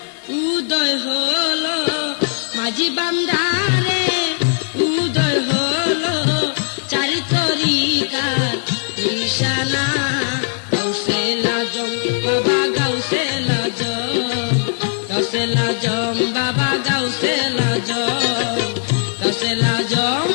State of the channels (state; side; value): silent; right; digital silence